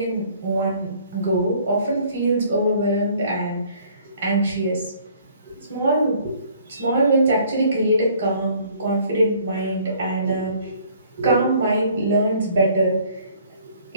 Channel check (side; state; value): both; inverted; correlation -0.58